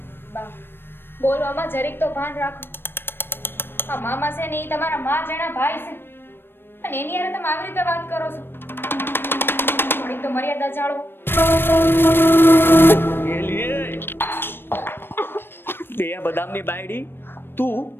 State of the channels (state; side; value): late; right; 0.10 ms